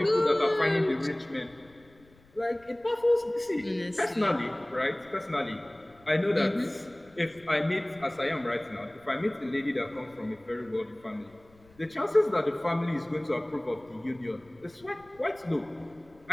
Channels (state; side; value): noise; left; rumble, 28 dB below the sound